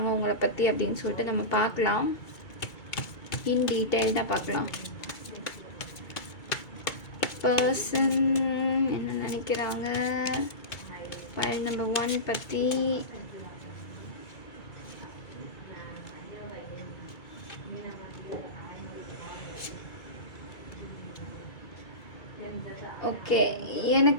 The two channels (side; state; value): right; late; 2.3 ms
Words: உங்களை பற்றி அப்படின்னு சொல்லிட்டு நம்ம பார்க்கலாம். இன் டீட்டெயில்டாக பார்க்கலாம். பர்சன் என்ன நினைக்கிறாங்க ஃபைல் நம்பர் 1 பற்றி. ஓகே,